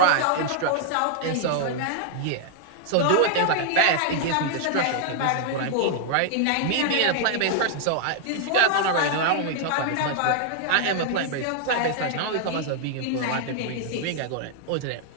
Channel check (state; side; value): different; both; correlation -0.01